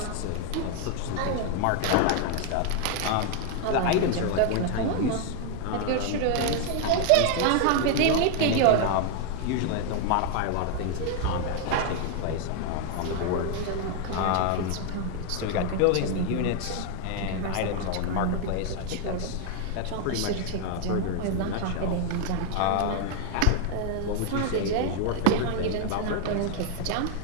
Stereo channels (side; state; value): both; different; correlation 0.00